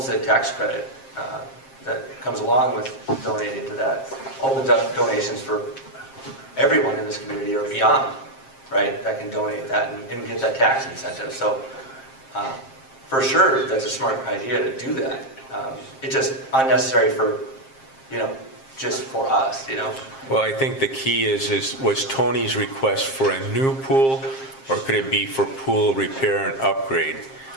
tax credit that comes along with donating to that. Opens up donations for everyone in this community or beyond, right? That can donate that and get that tax incentive. So for sure, that's a smart idea to do that. It's just unnecessary for, just for us, Well, I think the key was Tony's request for a new pool, or could it be for pool repair and upgrade?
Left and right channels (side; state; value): right; late; 7.5 ms